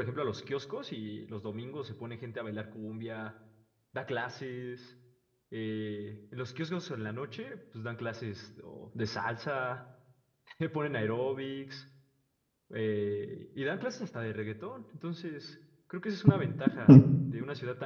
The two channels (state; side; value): identical; both; correlation 1.00